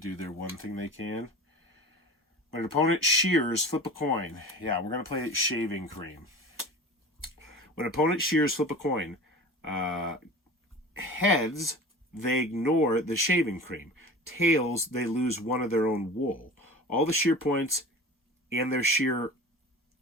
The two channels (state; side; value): normal; both; correlation 0.35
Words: their one thing they can. When an opponent shears, flip a coin. Yeah, we're going to play shaving cream. When an opponent shears, flip a coin. Heads, they ignore the shaving cream. Tails, they lose 1 of their own wool. All the shear points and their shear